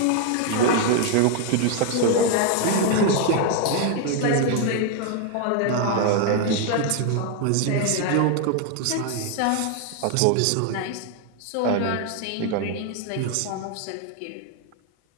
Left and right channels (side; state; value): both; different; correlation 0.00